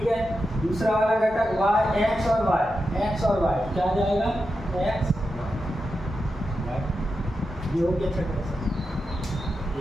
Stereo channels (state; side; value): normal; both; correlation 0.89